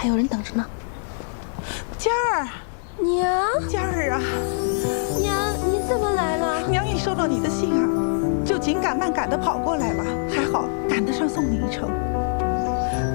有人等着呢。佳儿，娘，佳儿啊，娘，你怎么来了？娘一收到你的信啊，就紧赶慢赶的跑过来了，还好赶得上送你一程。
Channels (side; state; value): right; silent; 59 dB below the other